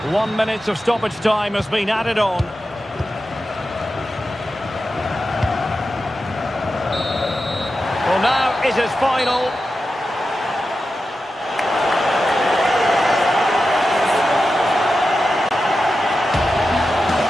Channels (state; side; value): normal; both; correlation 0.91